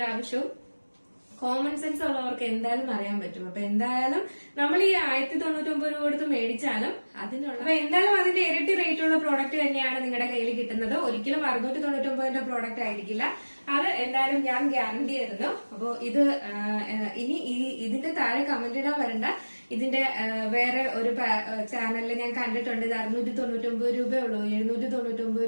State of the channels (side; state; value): both; inverted; correlation -1.00